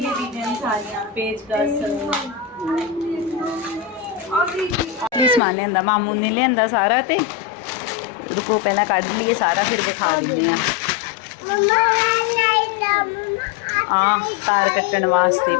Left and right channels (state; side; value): drops out; right; at 5.4 s